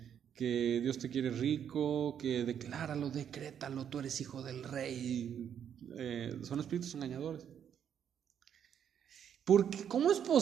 Dios te quiere rico, que decláralo, decrétalo, tú eres hijo del rey. Son espíritus engañadores. Porque, ¿cómo es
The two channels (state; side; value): quieter; left; 8.7 dB